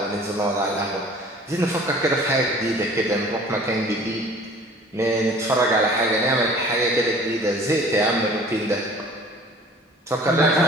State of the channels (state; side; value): normal; both; correlation 0.48